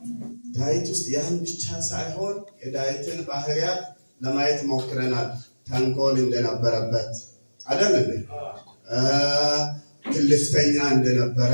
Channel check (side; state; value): both; inverted; correlation -1.00